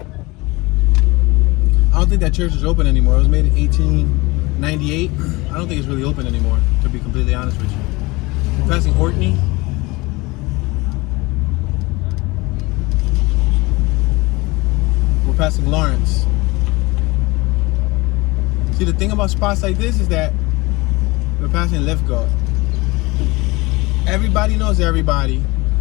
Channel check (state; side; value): quieter; right; 23.0 dB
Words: I don't think that church is open anymore. It was made in 1898. I don't think it's really open anymore, to be completely honest with you. We're passing Orkney. We're passing Lawrence. See, the thing about spots like this is that we're passing Lithgow. Everybody knows everybody,